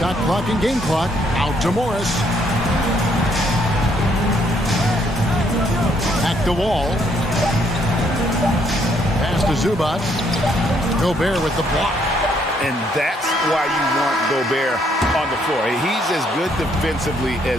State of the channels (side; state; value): both; normal; correlation 0.70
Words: clock and game clock. Out to Morris. Back to Wall. Pass to Zubac. Gobert with the block. And that's why you want Gobert on the floor. He's as good defensively